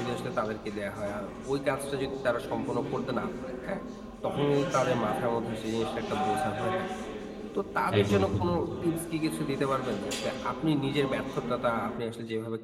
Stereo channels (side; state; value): both; identical; correlation 1.00